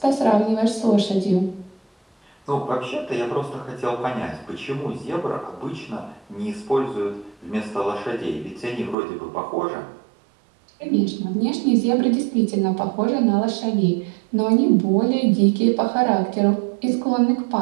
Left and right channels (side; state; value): left; drops out; at 9.0 s